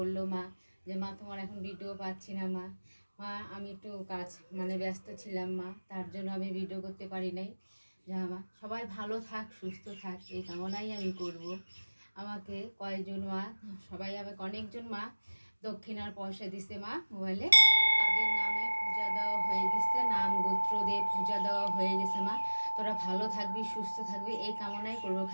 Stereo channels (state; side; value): inverted; both; correlation -1.00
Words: মা যে মা তোমার এখন ভিডিও পাচ্ছি না মা। মা আমি একটু কাজ ব্যস্ত ছিলাম মা, তার জন্য আমি ভিডিও করতে পারি নাই। যা মা সবাই ভালো থাক, সুস্থ থাক, এই কামনাই আমি করব। আমাকে কয়েকজন মা, সবাই আমাকে অনেকজন মা দক্ষিণার পয়সা দিছে মা মোবাইলে, তাদের নামে পূজা দেওয়া হয়ে গেছে, নাম গোত্র দিয়ে পূজা দেওয়া হয়ে গেছে মা। তোরা ভালো থাকবি, সুস্থ থাকবি, এই কামনাই করবো।